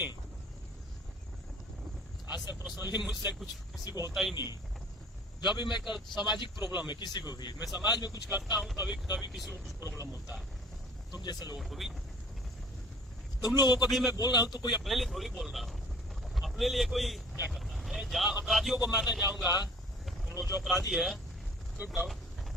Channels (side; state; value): both; normal; correlation 0.50